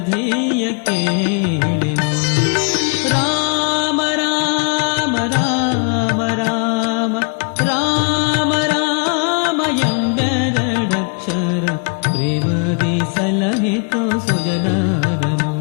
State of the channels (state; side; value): quieter; right; 37.5 dB